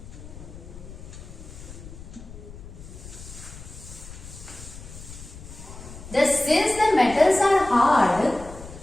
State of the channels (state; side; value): noise; left; rumble, 15 dB below the sound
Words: since the metals are hard,